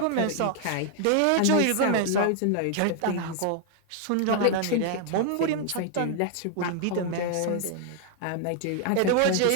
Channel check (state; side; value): different; both; correlation 0.00